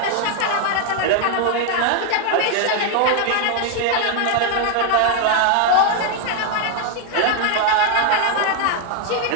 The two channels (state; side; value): different; both; correlation 0.00